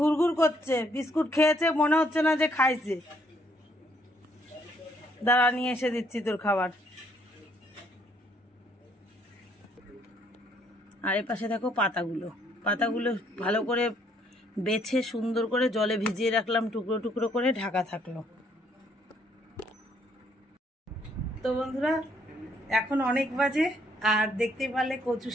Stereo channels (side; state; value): both; normal; correlation 0.68